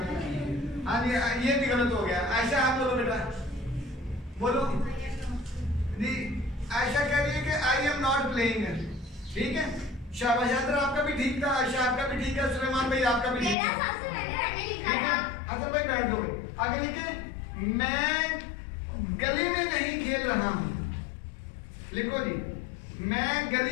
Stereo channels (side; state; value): right; drops out; at 13.6 s